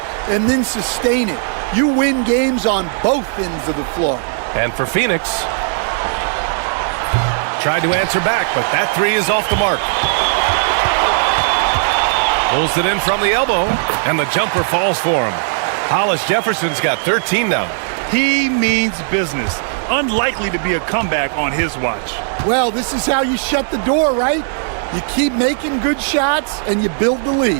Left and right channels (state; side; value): silent; left; digital silence